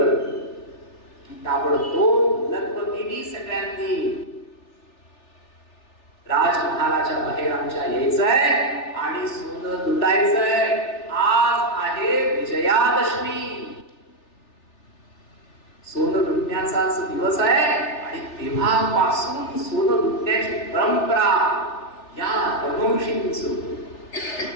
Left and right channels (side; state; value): right; late; 3.4 ms